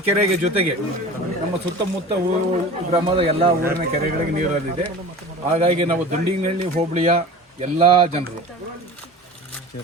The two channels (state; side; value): normal; both; correlation 0.37